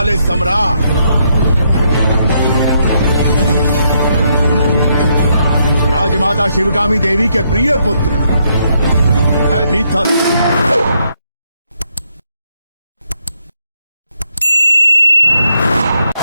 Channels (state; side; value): inverted; both; correlation -0.76